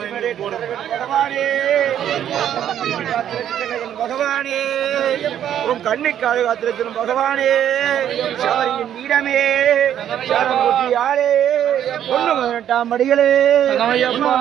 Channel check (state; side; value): quieter; left; 10.3 dB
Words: பகவானே பகவானே உன் கண்ணுக்காக காத்திருக்கும் பகவானே சபரியின் வீரமே சரங்குட்டியாரே பொண்ணு 18 மடிகளே